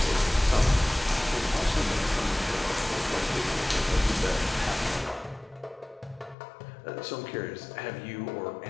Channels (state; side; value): drops out; right; at 6.4 s